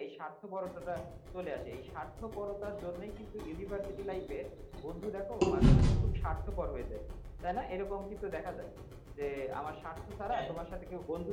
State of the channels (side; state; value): both; identical; correlation 1.00